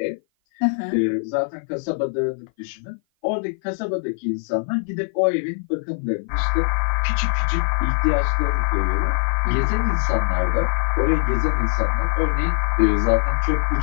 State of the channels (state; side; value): silent; right; 56 dB below the other